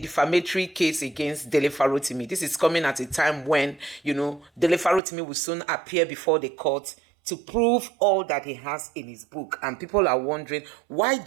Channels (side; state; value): left; drops out; at 5.0 s